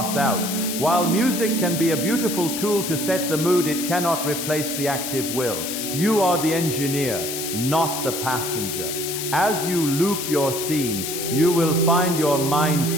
out. While music can be a beautiful tool to set the mood, it cannot replace the active will. You are the engineer, not the passenger. As you loop your scene, you will find your mind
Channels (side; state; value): left; noise; hiss, 5 dB below the sound